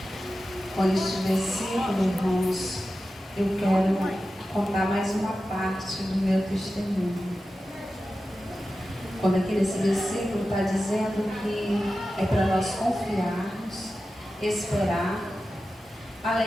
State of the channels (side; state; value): both; normal; correlation 0.93